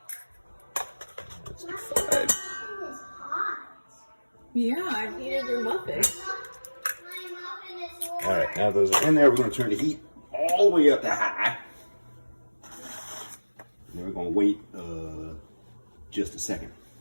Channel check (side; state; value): both; inverted; correlation -1.00